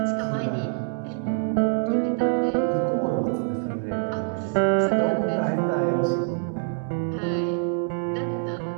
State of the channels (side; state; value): left; silent; digital silence